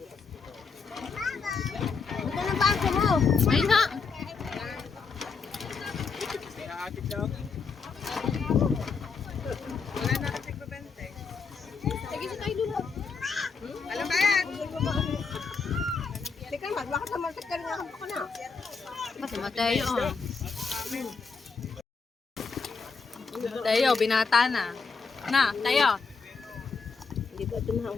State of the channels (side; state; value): right; quieter; 5.1 dB